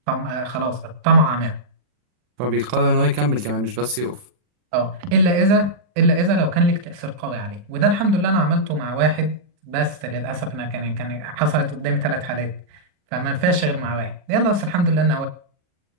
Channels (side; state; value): left; late; 40 ms